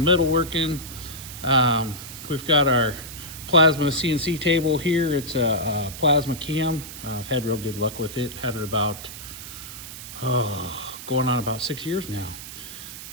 We've got our plasma CNC table here. It's a plasma cam. I've had real good luck with it. Had it about going on about 6 years now.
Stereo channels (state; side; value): noise; right; hiss, 12 dB below the sound